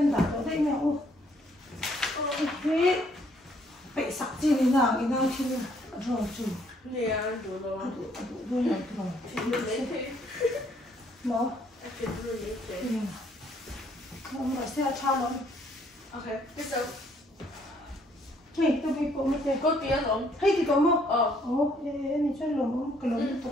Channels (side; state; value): both; normal; correlation 0.66